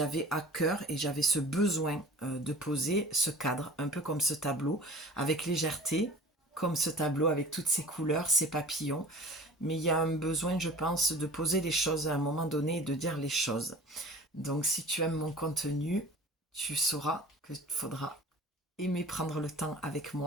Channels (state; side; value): normal; both; correlation 0.41